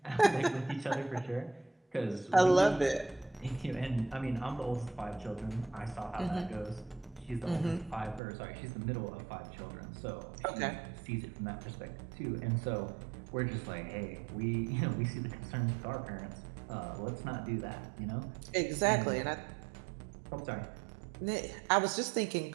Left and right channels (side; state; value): left; drops out; at 8.2 s